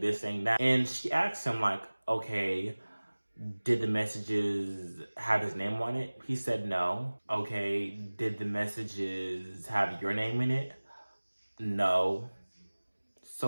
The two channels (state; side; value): inverted; both; correlation -1.00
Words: saying that. And she asks him like, okay, did the messages have his name on it? He said no. Okay, did the messages have your name in it? No.